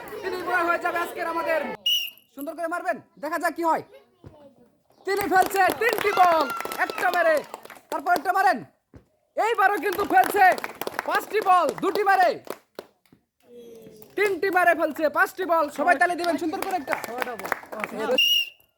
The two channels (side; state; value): both; identical; correlation 1.00